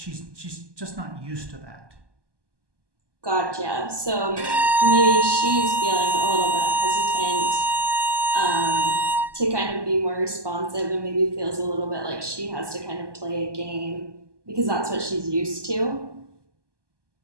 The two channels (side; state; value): left; late; 1.2 ms